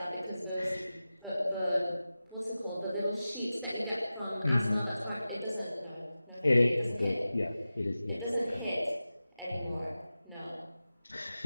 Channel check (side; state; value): both; inverted; correlation -0.95